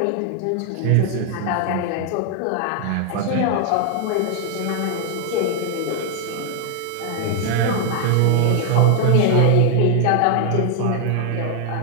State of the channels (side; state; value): both; different; correlation 0.00